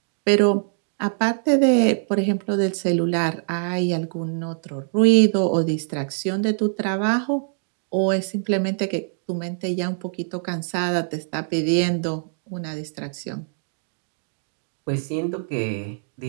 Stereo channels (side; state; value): left; silent; digital silence